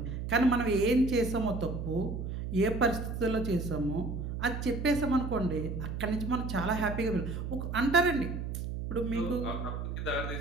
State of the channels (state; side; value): noise; right; hum, 5 dB below the sound